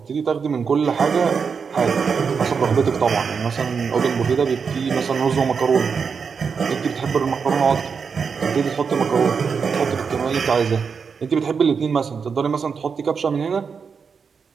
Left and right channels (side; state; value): left; quieter; 5.9 dB